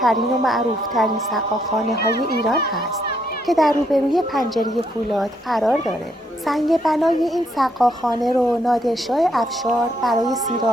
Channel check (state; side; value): normal; both; correlation 0.74